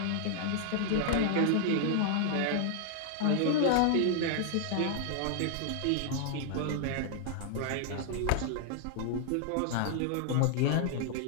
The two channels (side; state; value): both; different; correlation -0.01